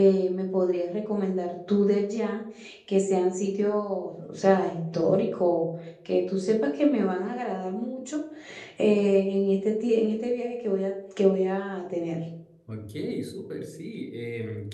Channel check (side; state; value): both; identical; correlation 1.00